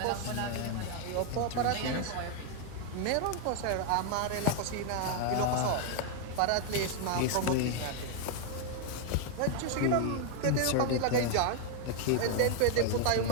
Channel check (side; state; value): both; different; correlation 0.00